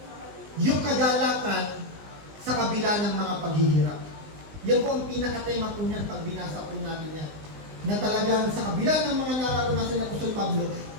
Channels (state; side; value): late; left; 19 ms